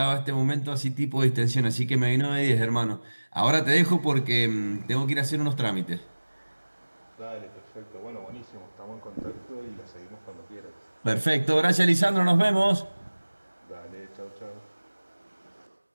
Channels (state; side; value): inverted; both; correlation -1.00